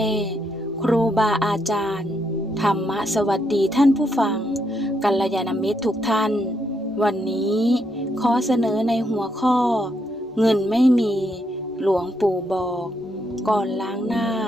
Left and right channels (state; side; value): normal; both; correlation 0.77